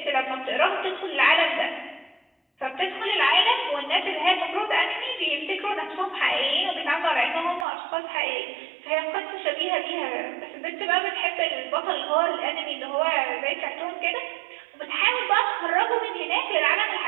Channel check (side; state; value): left; drops out; at 7.7 s